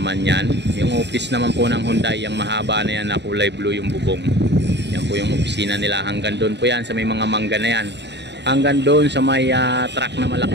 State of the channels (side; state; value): left; late; 0.50 ms